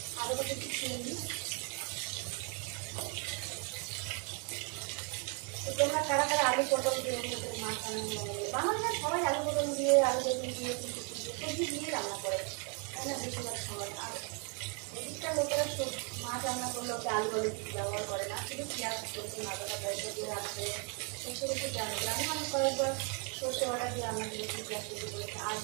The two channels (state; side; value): quieter; left; 36.8 dB